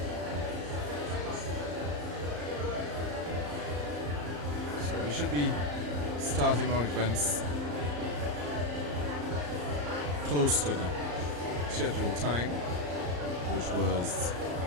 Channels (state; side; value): late; left; 34 ms